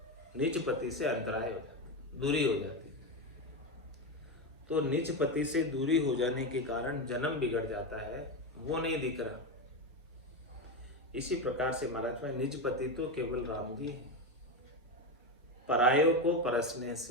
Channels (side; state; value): both; normal; correlation 0.14